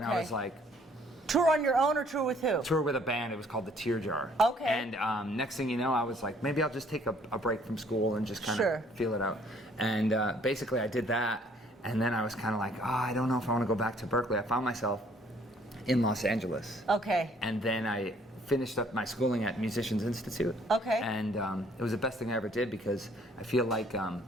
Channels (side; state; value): both; normal; correlation 0.61